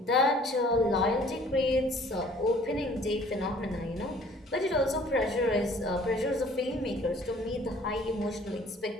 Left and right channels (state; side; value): normal; both; correlation 0.54